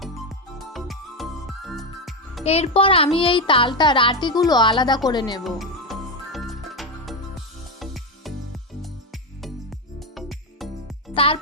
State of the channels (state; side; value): normal; both; correlation 0.10